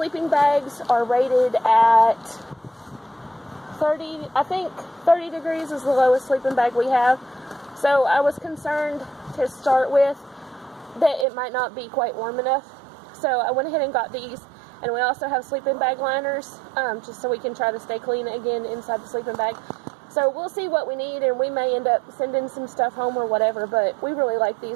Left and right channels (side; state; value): left; drops out; at 11.2 s